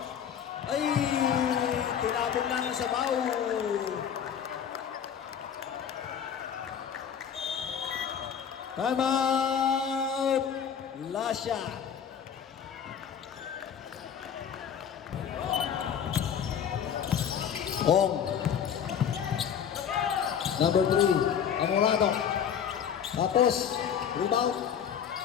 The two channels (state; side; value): quieter; right; 8.3 dB